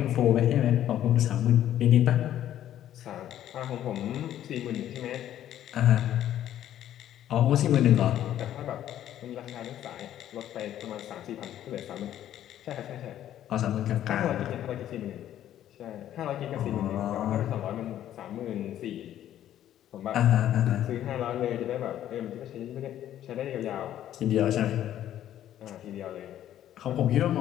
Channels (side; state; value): right; quieter; 11.7 dB